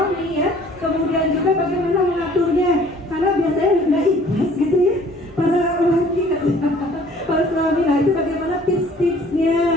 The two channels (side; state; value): right; noise; hum, 25 dB below the sound